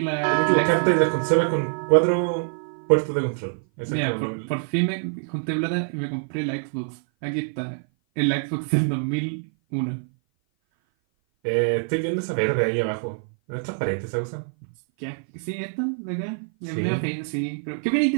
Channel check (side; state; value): left; silent; 57 dB below the other